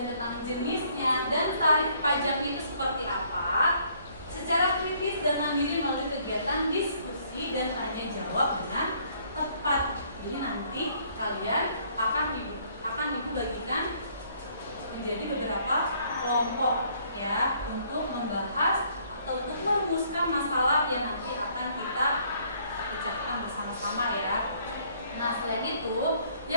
tentang jenisnya, dan tarif pajaknya itu seperti apa, secara kritis dan mandiri melalui kegiatan diskusi dan tanya jawab dengan tepat. Jadi nanti kalian akan ibu bagikan menjadi beberapa kelompok ya, untuk membahas atau untuk merumuskan masalah yang nanti akan kita pecahkan bersama-sama ya. Nah, selain itu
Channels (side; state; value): both; inverted; correlation -0.63